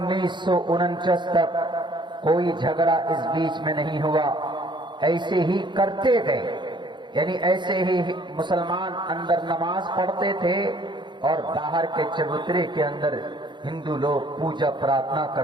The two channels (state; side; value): late; left; 0.22 ms